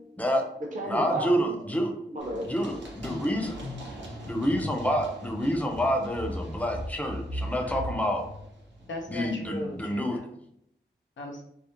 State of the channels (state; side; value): normal; both; correlation 0.75